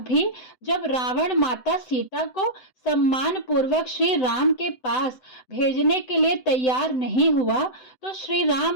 भी जब रावण माता सीता को सम्मान पूर्वक श्री राम के पास भेजने के लिए तैयार नहीं हुआ तो श्री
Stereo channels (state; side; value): late; right; 7.9 ms